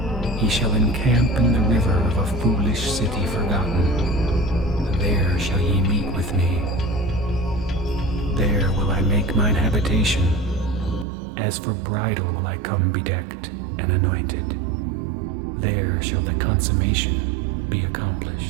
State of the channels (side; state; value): left; drops out; at 11.1 s